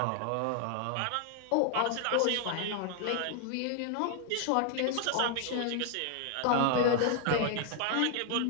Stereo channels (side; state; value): both; different; correlation 0.00